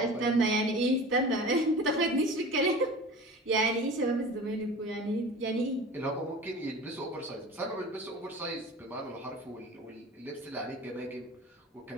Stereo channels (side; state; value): both; normal; correlation 0.37